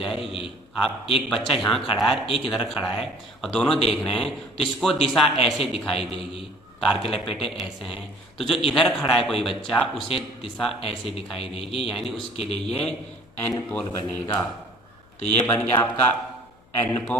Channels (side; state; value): left; noise; hum, 30 dB below the sound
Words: आप एक बच्चा यहाँ खड़ा है, एक इधर खड़ा है और दोनों देख रहे हैं, तो इसको दिशा ऐसे दिखाई देगी, तार के लपेटे ऐसे हैं। तो जो इधर खड़ा है कोई बच्चा, उसे दिशा ऐसे दिखाई देगी, यानी उसके लिए ये एन पोल बनेगा। तो ये बन गया आपका N